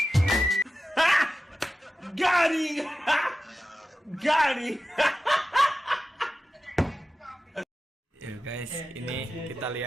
Garing. Ya guys, ini kita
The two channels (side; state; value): both; normal; correlation 0.93